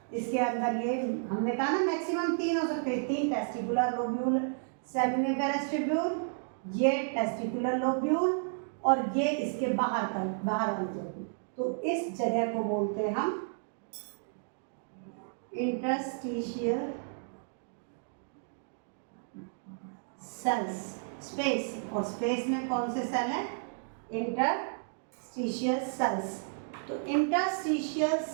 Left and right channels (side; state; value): left; silent; digital silence